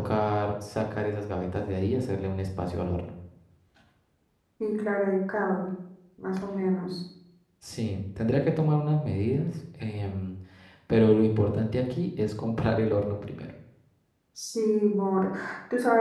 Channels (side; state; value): both; identical; correlation 1.00